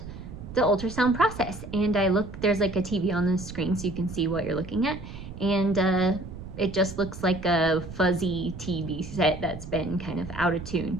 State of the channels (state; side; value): noise; right; rumble, 11 dB below the sound